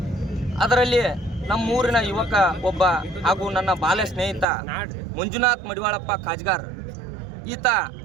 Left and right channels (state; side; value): drops out; left; at 4.5 s